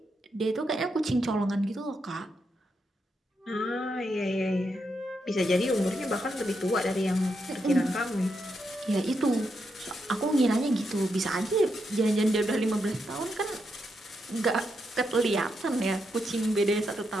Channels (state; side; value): normal; both; correlation 0.82